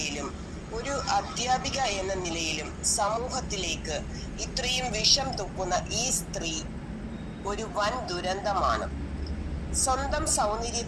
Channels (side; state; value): both; identical; correlation 1.00